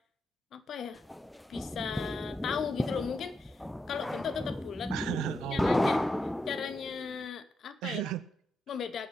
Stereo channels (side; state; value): both; normal; correlation 0.83